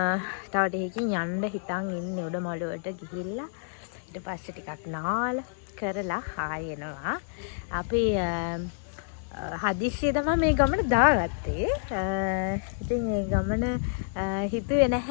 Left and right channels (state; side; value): silent; right; digital silence